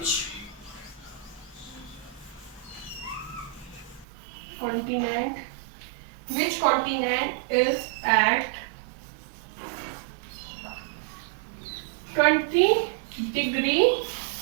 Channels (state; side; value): drops out; left; at 4.0 s